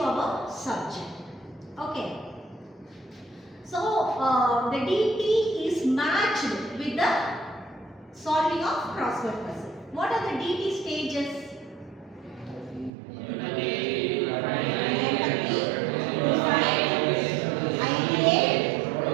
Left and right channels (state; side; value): drops out; left; at 12.9 s